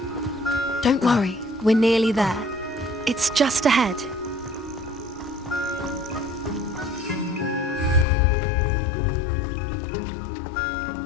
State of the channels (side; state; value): right; drops out; at 8.1 s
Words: Don't worry, we're nearly there. It's just ahead.